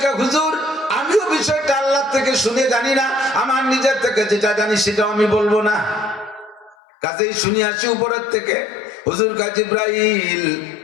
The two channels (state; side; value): drops out; right; at 6.8 s